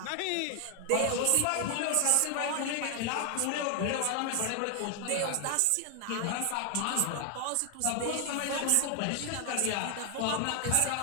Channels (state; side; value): different; both; correlation 0.00